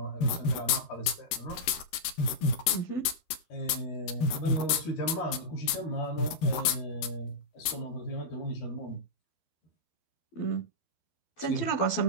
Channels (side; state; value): right; late; 13 ms